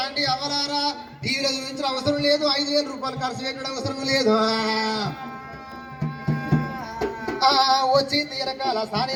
అవలారా టీవీలో చూపించిన అవసరం లేదు, 5,000 రూపాయలు ఖర్చు పెట్టడం అవసరం లేదు. వచ్చి తీరకాల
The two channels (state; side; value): identical; both; correlation 1.00